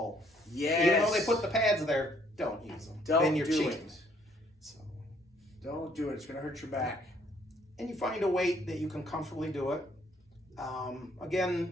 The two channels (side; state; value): both; normal; correlation 0.64